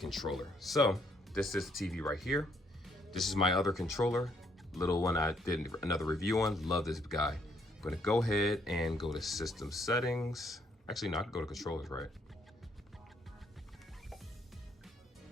So this is the TV right here. This is my other controller, little one I did another review on. Love this guy. I'm gonna go ahead and go to system settings. Actually, no, I can go to controllers, right?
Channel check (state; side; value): normal; both; correlation 0.70